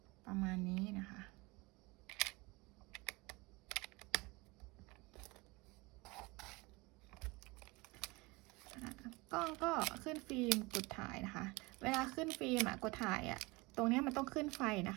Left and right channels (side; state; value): left; quieter; 24.3 dB